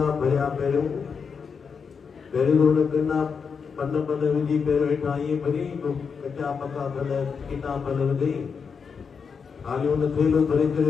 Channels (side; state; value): right; quieter; 5.9 dB